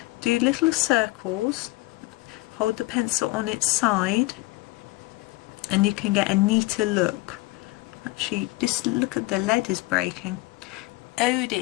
Do little circles, hold the pencil on its side, and you can get a neater look. Actually, just look at the lead is breaking. Oh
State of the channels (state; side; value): quieter; right; 22.0 dB